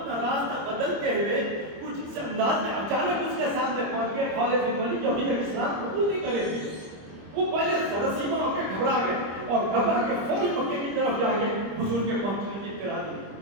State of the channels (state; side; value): late; left; 25 ms